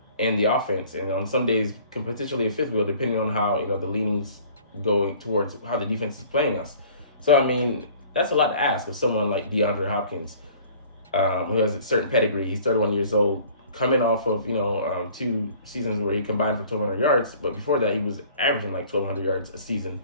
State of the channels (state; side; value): inverted; both; correlation -0.51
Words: in the offense, and on some days potentially a fifth wheel, depending on how the leanings going towards how the defense is playing us. So I mean, that's a lot to ask of someone like DeAndre Hopkins, who has a certain pedigree. He's 31 years old, coming off of 2 seasons where he combined for 1,200 yards, but before that he was averaging like 1,200 yards a season.